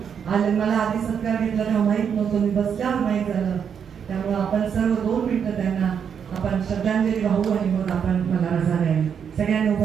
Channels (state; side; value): quieter; left; 7.5 dB